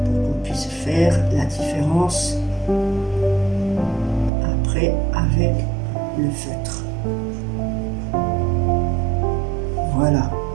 Faire la différence après avec le feutre. Voilà.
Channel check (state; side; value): drops out; left; at 4.3 s